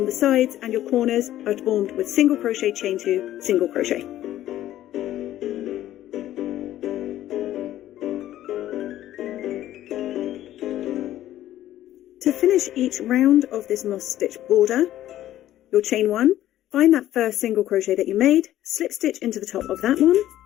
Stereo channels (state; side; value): quieter; right; 13.2 dB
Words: the sides and your corners are formed with single crochet, chain 2, single crochet. To finish each round of this moss stitch border, you'll chain 1, find that first single crochet that you made, slip stitch into the top of that one,